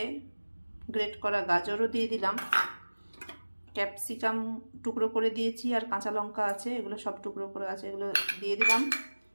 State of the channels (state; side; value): inverted; both; correlation -1.00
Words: গ্রেট করা গাজরও দিয়ে দিলাম, ক্যাপসিকাম টুকরো করে দিয়েছি, আর কাঁচা লঙ্কা আছে, এগুলো সব টুকরো করে আছে, এগুলো দিয়ে দিলাম।